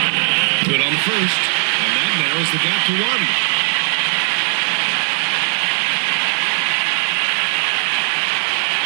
Good on the first, and that narrows the gap to one.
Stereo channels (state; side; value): silent; left; digital silence